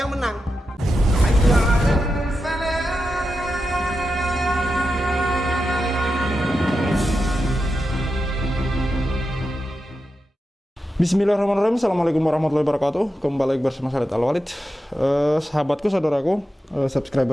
yang menang. Bismillahirrahmanirrahim. Assalamualaikum warahmatullahi wabarakatuh. Kembali lagi bersama saya Al-Walid. Sahabatku, saudaraku,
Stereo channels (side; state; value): both; normal; correlation 0.89